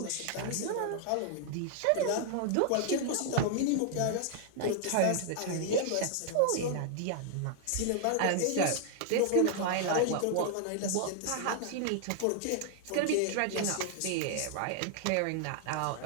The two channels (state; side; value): different; both; correlation 0.00